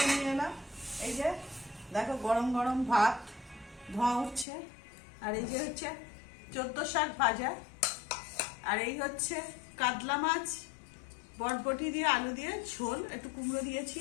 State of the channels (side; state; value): right; drops out; at 4.5 s